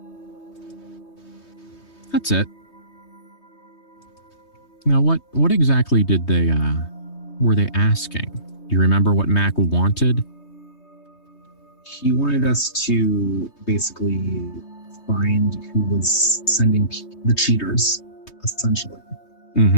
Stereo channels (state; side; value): late; right; 3.2 ms